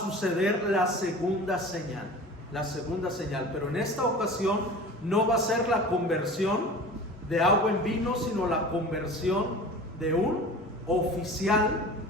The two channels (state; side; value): normal; both; correlation 0.38